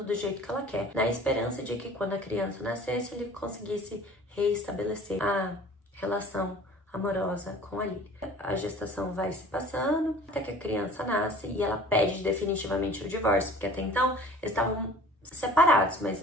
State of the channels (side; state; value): both; normal; correlation 0.47